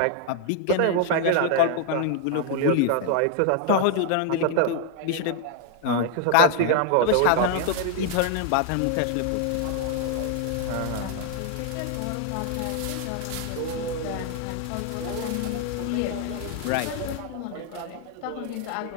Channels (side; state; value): both; different; correlation 0.00